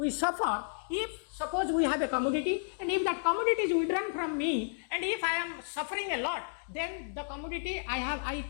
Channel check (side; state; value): right; silent; digital silence